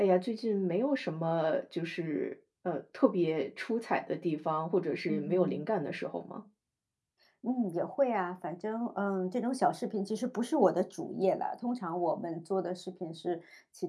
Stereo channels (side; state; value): both; identical; correlation 1.00